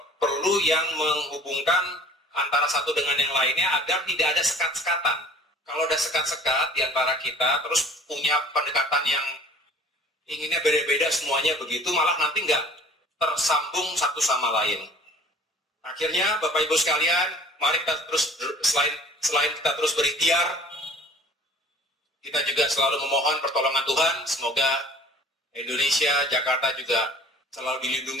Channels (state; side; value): normal; both; correlation 0.49